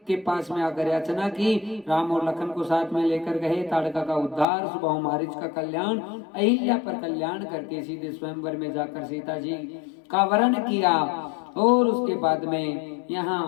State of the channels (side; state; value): right; drops out; at 4.5 s